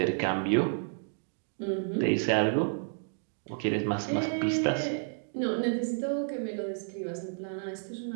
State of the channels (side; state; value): left; silent; digital silence